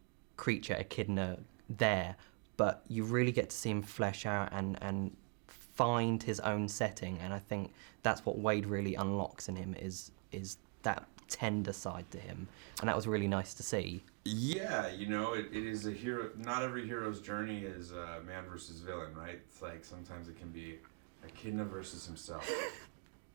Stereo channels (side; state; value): left; quieter; 34.7 dB